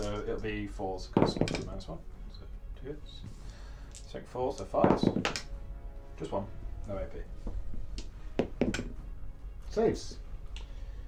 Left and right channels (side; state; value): both; identical; correlation 1.00